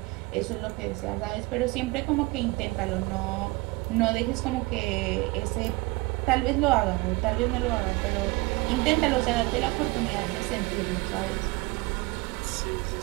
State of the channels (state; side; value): quieter; left; 23.7 dB